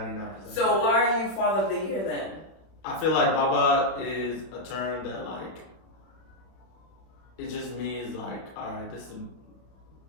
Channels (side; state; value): right; late; 31 ms